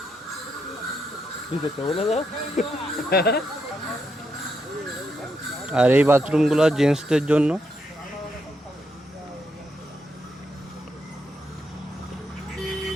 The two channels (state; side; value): normal; both; correlation 0.80